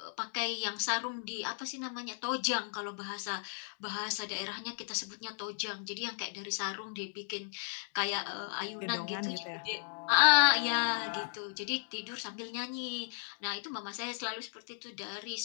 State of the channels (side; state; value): right; silent; digital silence